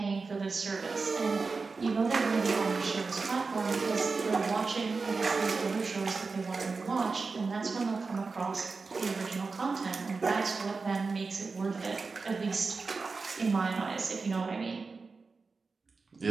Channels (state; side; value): quieter; left; 4.3 dB